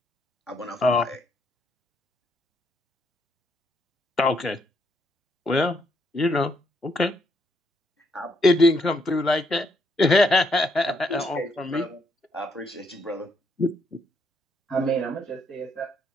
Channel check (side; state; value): both; normal; correlation 0.74